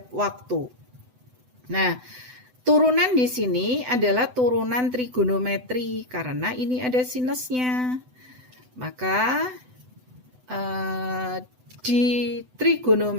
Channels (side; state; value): left; late; 7.9 ms